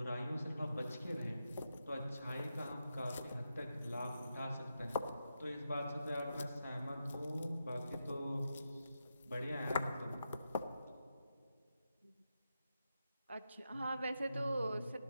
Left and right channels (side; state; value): both; inverted; correlation -0.87